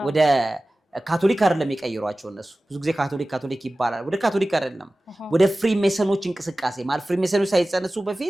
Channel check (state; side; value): normal; both; correlation 0.97